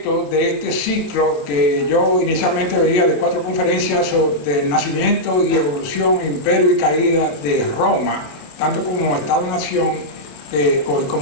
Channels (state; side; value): late; right; 27 ms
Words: de este ciclo que yo inicialmente veía de 4 conferencias sobre el nacimiento y evolución, imperio y caída de Roma, tanto como Estado-nación